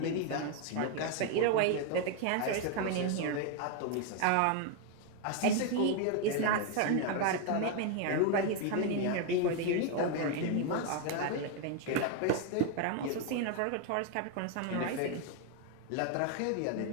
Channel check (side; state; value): both; different; correlation 0.01